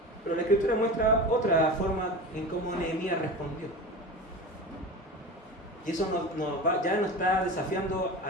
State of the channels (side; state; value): both; normal; correlation 0.30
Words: Pero la Escritura muestra otra forma en cómo Nehemías respondió. Y eso ya nos está desafiando